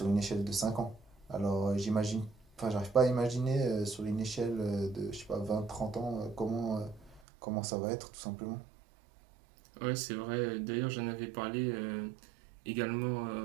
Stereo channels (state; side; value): drops out; left; at 7.2 s